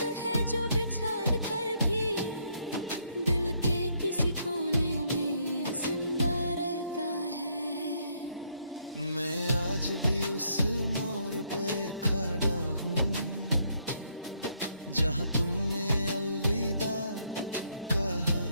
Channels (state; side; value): inverted; both; correlation -0.71